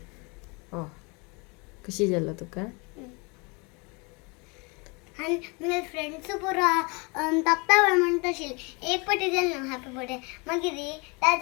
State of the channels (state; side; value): quieter; right; 29.8 dB